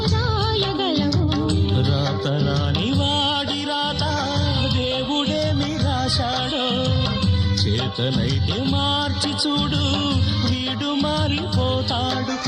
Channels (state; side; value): identical; both; correlation 1.00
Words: రాయగలవు. రాతరాని వాడి రాత దేవుడేమి రాశాడో, చేతనైతే మార్చి చూడు, వీడు మారిపోతాడు,